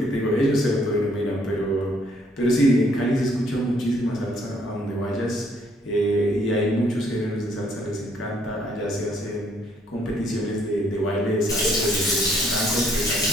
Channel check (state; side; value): normal; both; correlation 0.66